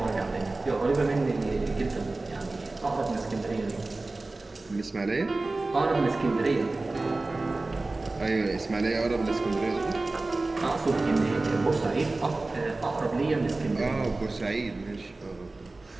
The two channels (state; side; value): quieter; left; 3.2 dB